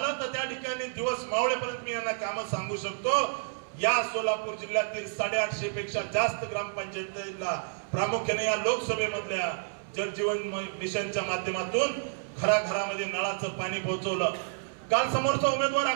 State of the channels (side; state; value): left; silent; 58 dB below the other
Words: तर त्या ठिकाणी दिवस मावळेपर्यंत मी यांना काम सांगू शकतो। या सोलापूर जिल्ह्यातील 850 पेक्षा जास्त ग्रामपंचायतीला प्रामुख्याने या लोकसभेमधल्या जल जीवन मिशनच्या माध्यमातून घराघरामध्ये नळाचं पाणी पोहोचवलं। काल समोरचा उमेदवार